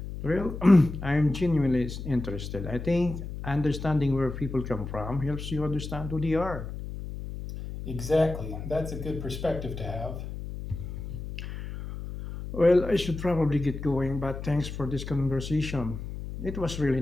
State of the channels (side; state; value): left; noise; hum, 8 dB below the sound